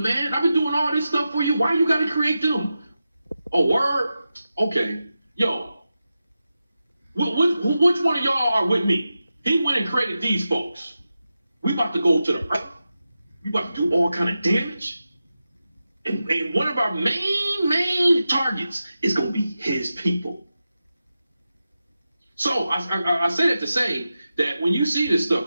man? I've been doing all this stuff for you. Why you got to create them? Oh, word? Okay. Yo, which one of y'all are with me? He went and created these folks. We about to go to the earth. We about to do all kind of damage. And one of our main targets is going to be his people. So I say that to say that when you see this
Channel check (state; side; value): inverted; both; correlation -0.91